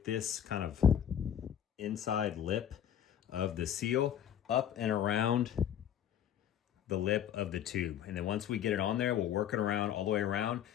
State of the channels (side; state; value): right; quieter; 9.8 dB